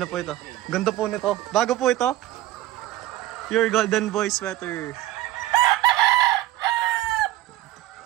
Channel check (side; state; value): left; quieter; 15.6 dB